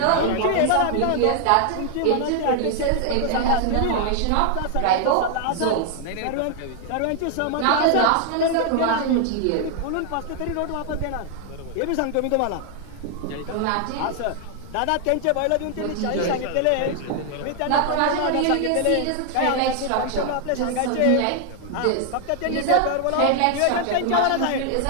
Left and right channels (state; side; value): different; both; correlation 0.00